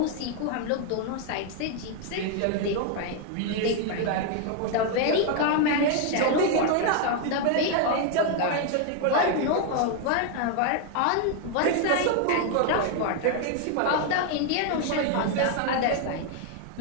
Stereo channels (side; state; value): both; different; correlation 0.00